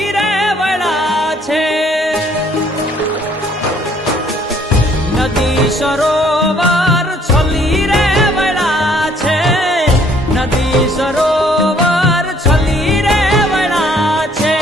रे वड़ा छे नदी सरोवर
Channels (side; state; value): both; normal; correlation 0.62